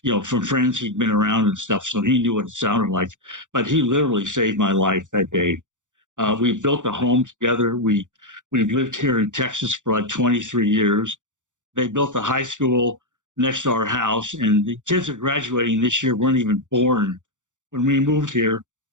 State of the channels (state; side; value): late; left; 0.86 ms